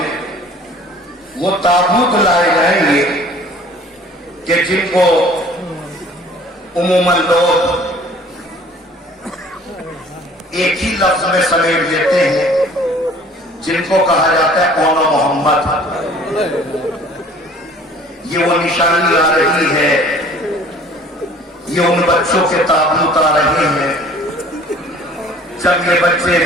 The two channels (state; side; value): normal; both; correlation 0.51